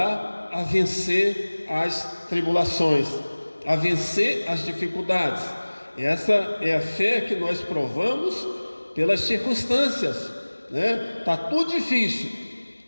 a vencer as tribulações, a vencer as dificuldades. Essa é a fé que nós provamos pelas circunstâncias, né? Está tudo difícil,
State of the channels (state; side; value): inverted; both; correlation -1.00